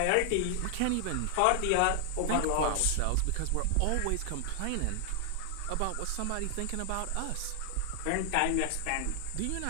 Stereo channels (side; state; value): both; different; correlation 0.00